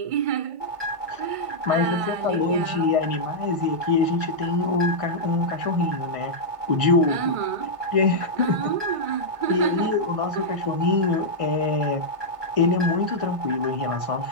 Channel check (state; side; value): late; left; 1.5 ms